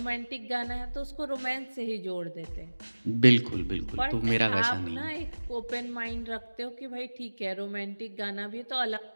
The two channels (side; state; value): both; inverted; correlation -1.00